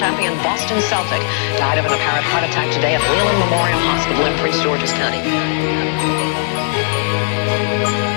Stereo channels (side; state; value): right; silent; digital silence